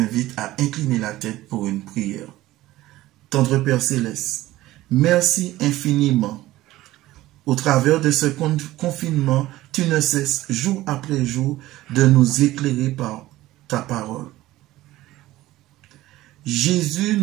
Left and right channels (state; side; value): quieter; left; 16.5 dB